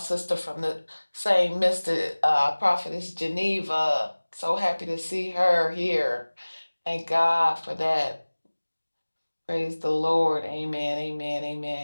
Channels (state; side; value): inverted; both; correlation -1.00